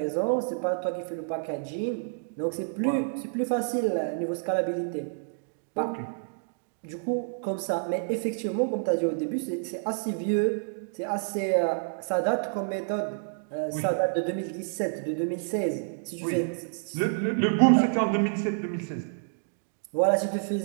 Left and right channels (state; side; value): silent; left; digital silence